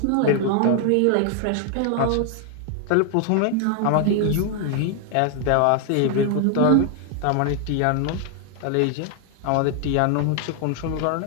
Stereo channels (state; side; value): different; both; correlation 0.00